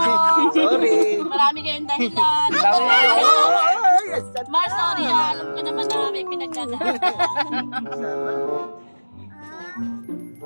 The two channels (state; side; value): inverted; both; correlation -1.00